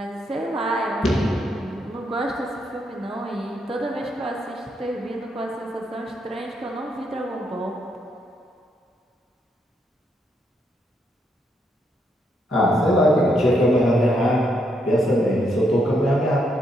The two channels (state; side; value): normal; both; correlation 0.77